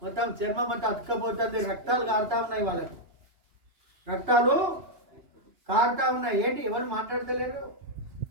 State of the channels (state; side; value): late; left; 2.9 ms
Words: మొత్తం చర్మం అంతా అతుక్కపోతుంది, రక్తాలు కారుతా ఉన్నాయి. వాళ్ళకు రక్తాలు కారుతా ఉన్నాయి. ఏంటి ఎవరు మాట్లాడతలేరు,